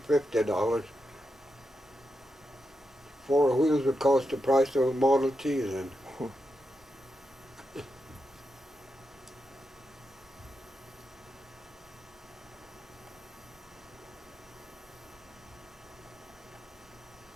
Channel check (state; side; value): normal; both; correlation 0.87